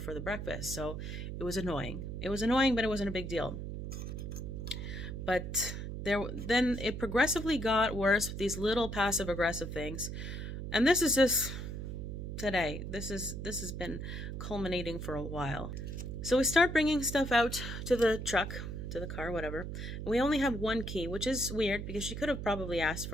the breakfast. So it was annoying. It was annoying, but it wasn't a big deal. But then it progressively got worse with these little passive aggressive things. And this is just today. This has been culminating for a while. So we start bringing stuff out to the truck, to the car, whatever. And we only have 1 key, which is weird because she could have probably asked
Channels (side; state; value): right; noise; hum, 6 dB below the sound